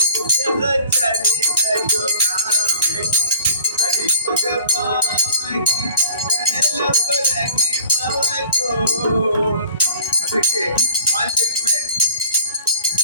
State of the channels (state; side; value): inverted; both; correlation -0.48